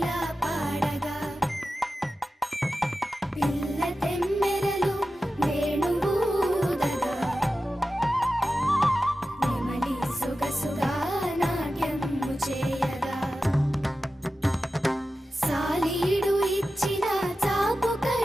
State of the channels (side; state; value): both; normal; correlation 0.93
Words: పాడగా పిల్ల తెమ్మెరలు వేణువూదగా నెమలి సొగసుగా నాట్యము చేయగా సాలీడు ఇచ్చిన చాపు